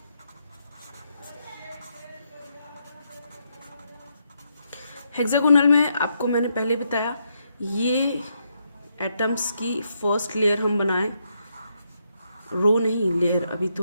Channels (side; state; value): both; inverted; correlation -0.79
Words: हेक्सागोनल में आपको मैंने पहले बताया, ये एटम्स की फर्स्ट लेयर हम बनाएं, रो नहीं, लेयर।